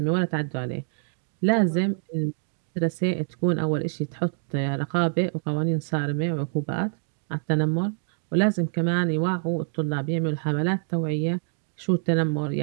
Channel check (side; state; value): left; silent; digital silence